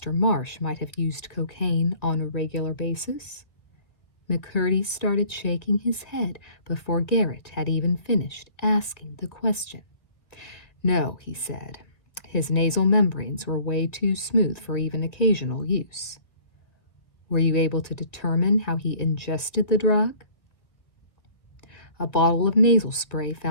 Marsh might have used cocaine on a regular basis? McCurdy started shaking his head before Garrett had even finished asking the question. No, he said. His nasal membranes were way too smooth for even occasional use. Were you able to determine how he ingested the drug? A bottle of nasal spray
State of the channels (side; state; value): right; late; 1.8 ms